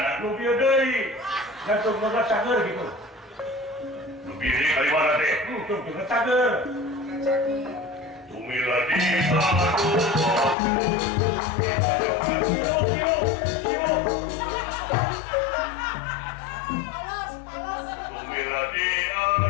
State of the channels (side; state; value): right; drops out; at 10.6 s